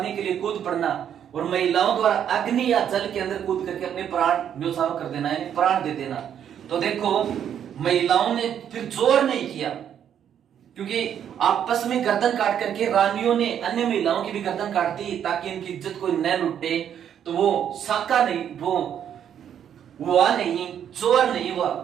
के लिए कूद पड़ना और महिलाओं द्वारा अग्नि या जल के अंदर कूद करके अपने प्राण न्योछावर कर देना, यानी प्राण दे देना। तो देखो महिलाओं ने फिर जोर नहीं किया, क्योंकि आपस में गर्दन काट करके रानियों ने अन्य महिलाओं की भी गर्दन काट दी ताकि इनकी इज्जत कोई न लुटे। तो वो साका नहीं, वो हुआ नहीं, जोर नहीं हुआ।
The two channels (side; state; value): left; quieter; 9.2 dB